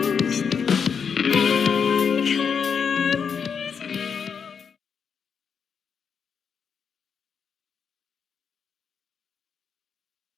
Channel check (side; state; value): right; quieter; 6.5 dB